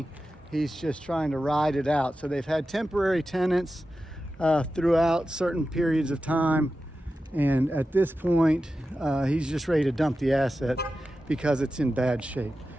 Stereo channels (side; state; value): both; normal; correlation 0.92